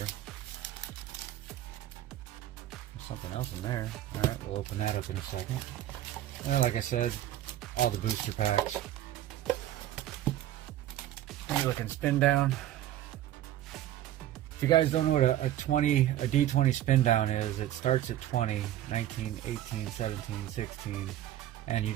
Something else in there. Alright, we'll open that up in a second. And like I said, all the booster packs. And you're looking spin down. If you guys don't know what a D20 spin down is, it starts at 20, 19, 18, 17, 16, and you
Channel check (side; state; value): left; quieter; 13.0 dB